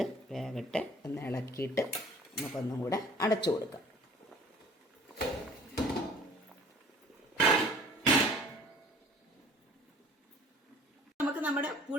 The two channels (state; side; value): normal; both; correlation 0.51